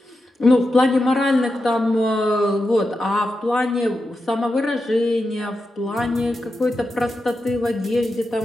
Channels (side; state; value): both; normal; correlation 0.89